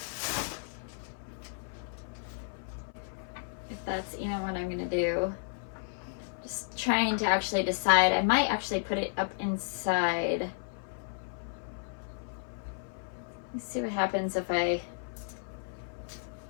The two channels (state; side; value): silent; right; 55 dB below the other